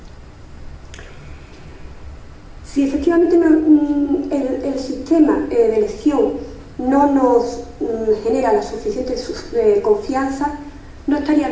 Si efectivamente el sistema de elección no nos genera la suficiente confianza, no estaría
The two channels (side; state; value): both; identical; correlation 1.00